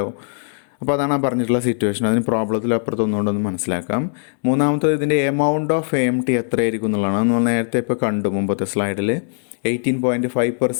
അപ്പോൾ അതാണ് പറഞ്ഞിട്ടുള്ള സിറ്റുവേഷൻ. അതിന് പ്രോബ്ലത്തിൽ അപ്പുറത്തൊന്നുകൊണ്ടൊന്ന് മനസ്സിലാക്കാം. മൂന്നാമത്തത് ഇതിൻ്റെ എമൗണ്ട് ഓഫ് AMT എത്രയായിരിക്കും എന്നുള്ളതാണ്. നമ്മൾ നേരത്തെ ഇപ്പോൾ കണ്ടു മുമ്പത്തെ സ്ലൈഡിൽ.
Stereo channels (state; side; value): silent; right; digital silence